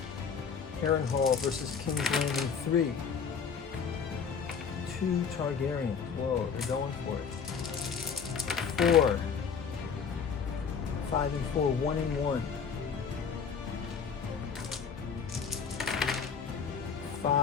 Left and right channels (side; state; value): right; quieter; 6.4 dB